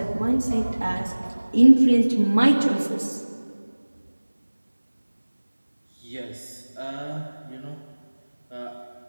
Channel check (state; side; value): inverted; both; correlation -1.00